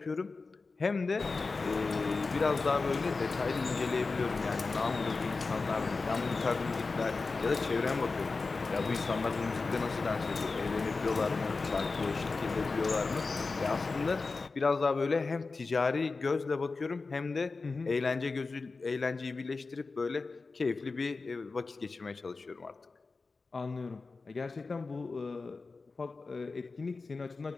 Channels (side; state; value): right; quieter; 4.0 dB